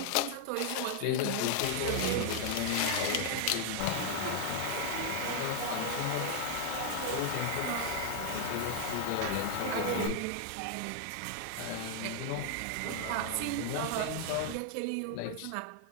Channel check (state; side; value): different; both; correlation 0.00